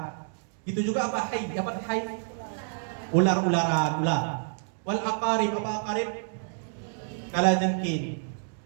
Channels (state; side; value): silent; left; digital silence